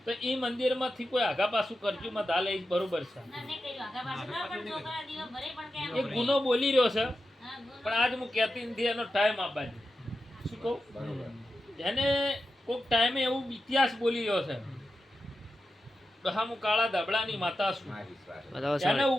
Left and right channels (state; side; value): normal; both; correlation 0.90